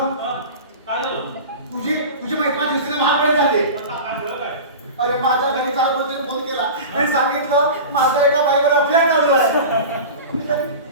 हा? काय झालं? तुझी मैत्रीण दिवशीने महागडे झाले. आता काय झालं काय? अरे माझ्या घरी काल कोणतरी फोन केला आणि सांगितलं माझा एका बाईवर अफेअर चालू आहे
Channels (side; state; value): both; inverted; correlation -0.32